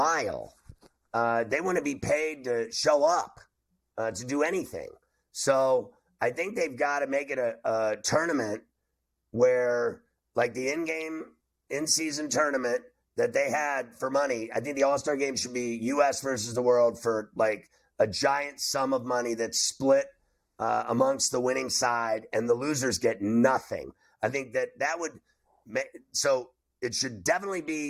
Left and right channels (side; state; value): both; identical; correlation 1.00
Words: They want to be paid to show up, to do anything. So I think they've got to make it a tournament where, like the in-season tournament that they had for money, I think the All-Star game should be U.S. versus the world for like a giant sum of money that's split amongst the winning side, and the losers get nothing. I think that would make, so it should definitely